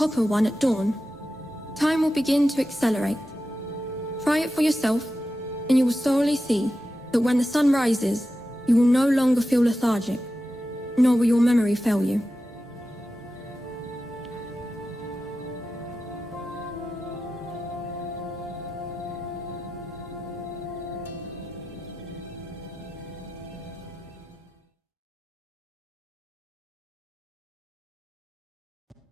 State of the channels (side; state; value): both; normal; correlation 0.92